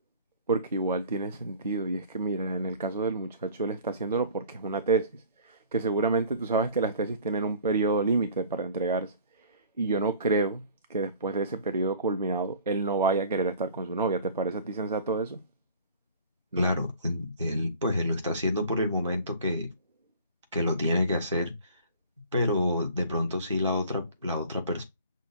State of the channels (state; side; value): inverted; both; correlation -0.46